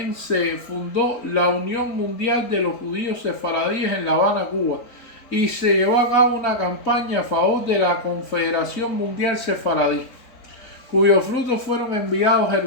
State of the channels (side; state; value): right; late; 4.0 ms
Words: se fundó la Unión Mundial de los Judíos Sefaradíes en La Habana, Cuba, y se llevó a cabo una campaña a favor de la Confederación Mundial Sefaradí, cuyos frutos fueron enviados a